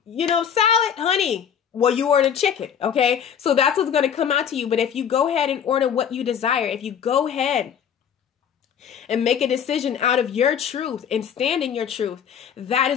salad, honey, well, you ordered chicken, okay? So that's what's going to come out to you. But if you go ahead and order what you desire, if you go ahead and make a decision out of your truth and stand in your truth, that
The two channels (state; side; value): quieter; right; 8.2 dB